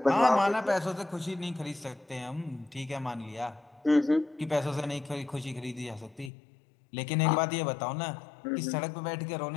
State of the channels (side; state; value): right; drops out; at 6.3 s